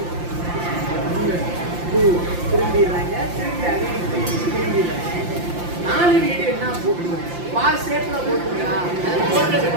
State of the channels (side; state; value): left; late; 5.8 ms